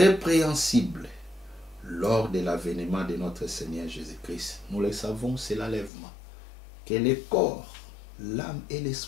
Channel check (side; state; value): right; drops out; at 5.9 s